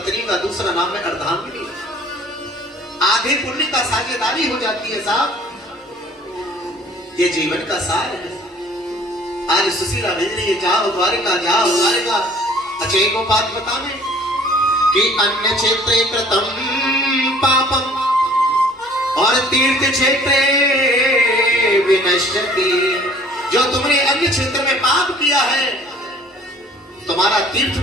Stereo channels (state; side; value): normal; both; correlation 0.52